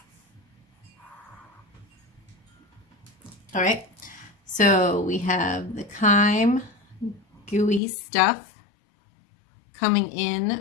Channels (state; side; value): drops out; right; at 7.8 s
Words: All right, so we have the chyme, gooey stuff coming